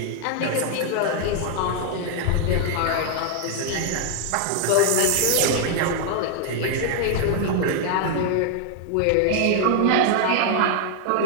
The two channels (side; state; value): both; different; correlation 0.00